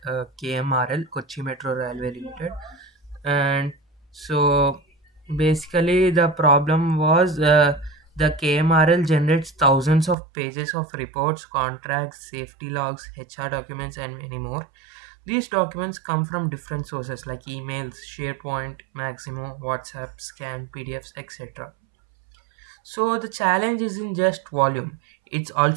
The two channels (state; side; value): drops out; left; at 10.2 s